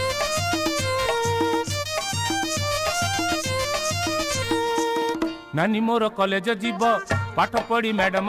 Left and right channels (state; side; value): identical; both; correlation 1.00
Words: नानी मोर कॉलेज जीव पाठ पढ़ी मैडम